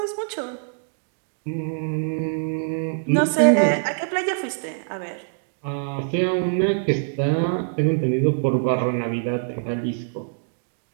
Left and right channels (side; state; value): left; silent; digital silence